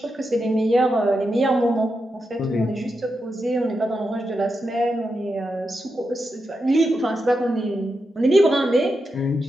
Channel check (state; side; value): normal; both; correlation 0.87